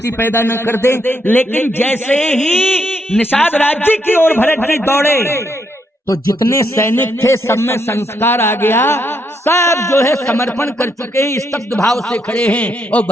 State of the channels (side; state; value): both; normal; correlation 0.77